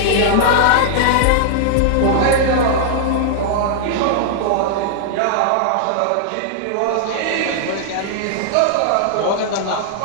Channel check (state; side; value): different; both; correlation -0.01